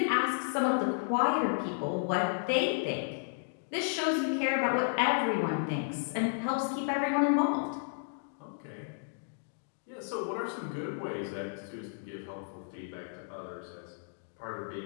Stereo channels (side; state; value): right; silent; digital silence